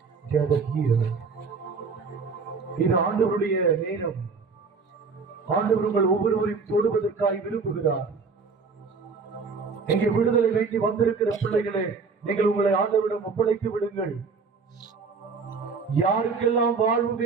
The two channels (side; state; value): left; quieter; 4.8 dB